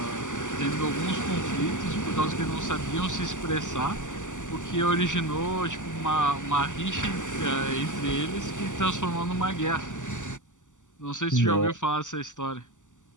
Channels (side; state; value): right; late; 0.86 ms